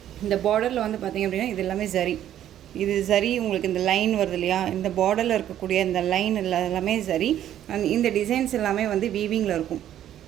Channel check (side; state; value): left; quieter; 11.4 dB